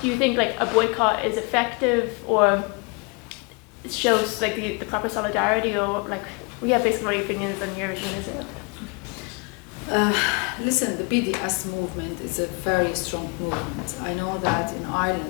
do you think like a boycott is effective, or shows like the proper solidarity, or like we have basically my opinions on EuroVision in Israel? Listen, the BDS movement is a very strong movement. I know that in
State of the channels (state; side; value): quieter; right; 32.3 dB